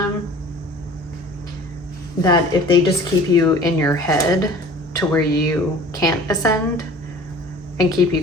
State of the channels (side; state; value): both; normal; correlation 0.45